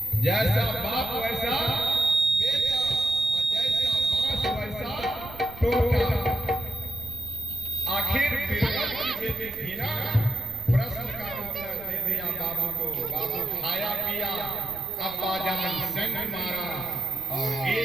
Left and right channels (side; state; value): right; noise; rumble, 17 dB below the sound